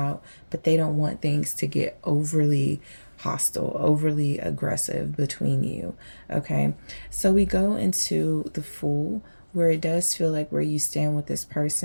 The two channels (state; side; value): inverted; both; correlation -1.00